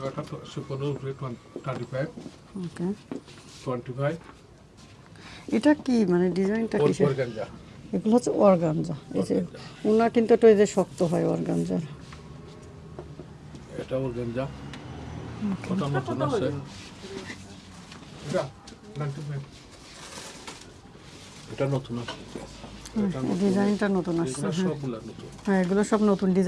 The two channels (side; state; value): both; identical; correlation 1.00